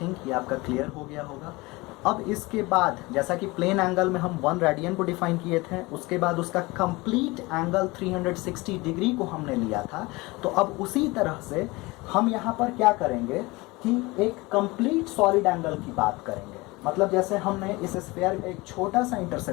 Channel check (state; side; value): quieter; right; 22.9 dB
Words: think ये आपका clear हो गया होगा। अब इसके बाद जैसा कि प्लेन एंगल में हम 1 रेडियन को डिफाइन किए थे, उसके बाद उसका कंप्लीट एंगल 360 डिग्री को हमने लिया था। तो अब उसी तरह से हम यहाँ पर क्या करेंगे कि एक कंप्लीट सॉलिड एंगल की बात करेंगे। मतलब जैसे हमने इस स्फीयर का एक छोटा सा